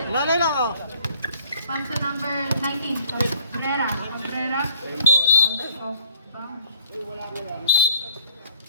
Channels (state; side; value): inverted; both; correlation -0.56